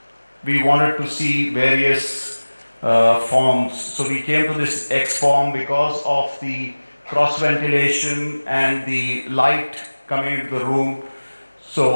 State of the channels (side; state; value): both; inverted; correlation -1.00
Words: we wanted to see various forms. So we came to this X form because of the cross ventilation, and the light coming into the room.